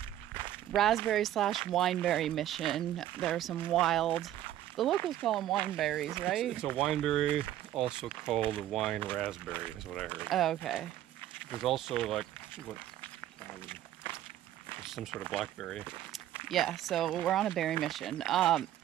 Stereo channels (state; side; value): quieter; left; 12.6 dB